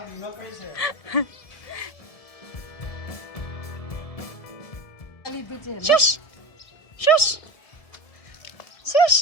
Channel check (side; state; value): right; late; 1.7 ms